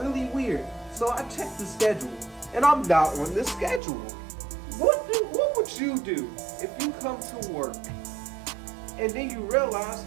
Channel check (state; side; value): drops out; left; at 3.8 s